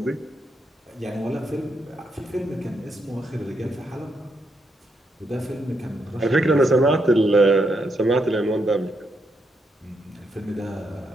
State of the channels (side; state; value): both; normal; correlation 0.80